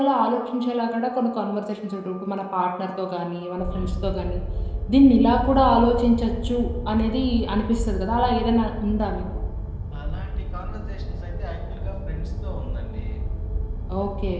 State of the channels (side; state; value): both; identical; correlation 1.00